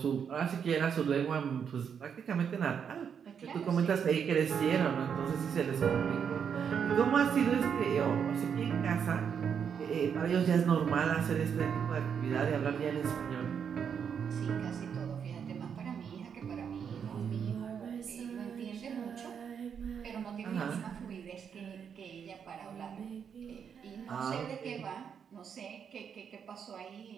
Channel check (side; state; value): left; quieter; 7.4 dB